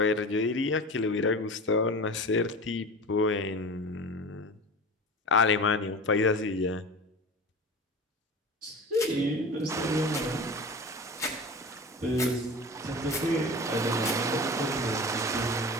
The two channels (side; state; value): both; normal; correlation 0.33